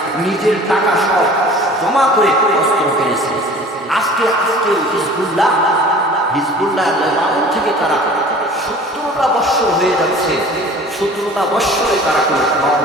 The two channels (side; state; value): both; normal; correlation 0.45